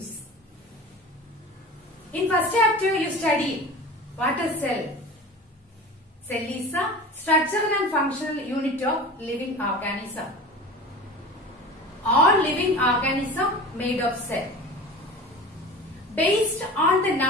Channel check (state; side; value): normal; both; correlation 0.35